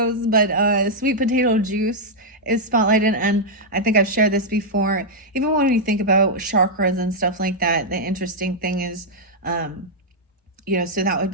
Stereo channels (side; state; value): both; normal; correlation -0.05